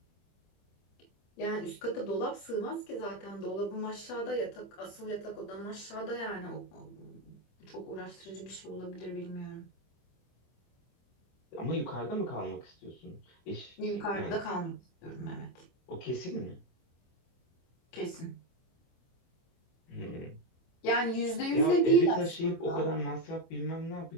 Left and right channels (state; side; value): late; right; 24 ms